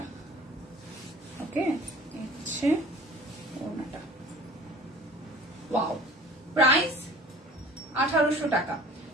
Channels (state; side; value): normal; both; correlation 0.46